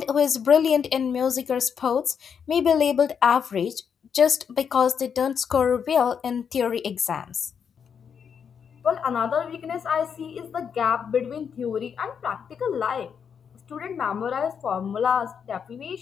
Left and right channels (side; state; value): right; quieter; 7.1 dB